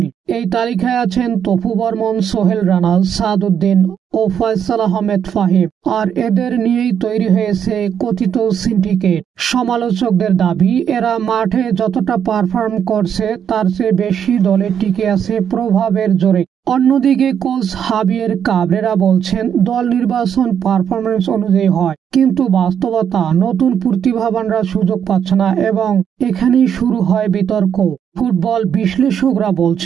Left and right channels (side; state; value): left; quieter; 8.4 dB